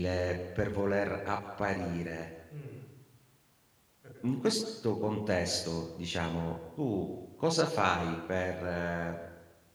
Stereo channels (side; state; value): both; identical; correlation 1.00